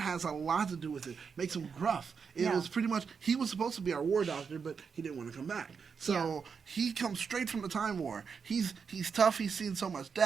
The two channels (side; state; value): left; quieter; 6.0 dB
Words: has a lot to do with it. Makes him gruff. It was pretty much, he was supposed to be our war doctor, but he didn't want to come back. So he comes straight from the Time War. He's tough. He's seen so much